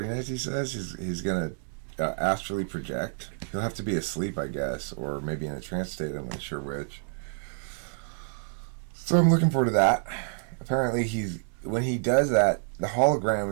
nights, he says. He's going to astrally project. He'll have to be asleep, I guess, or maybe in a trance state. I'm not sure which. So I'm looking forward to that. Apparently, when he does that, the hologram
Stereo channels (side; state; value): left; silent; 59 dB below the other